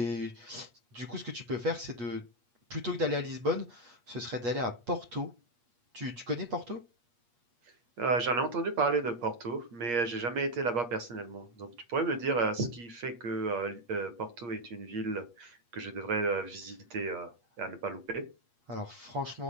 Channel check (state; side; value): late; left; 8.4 ms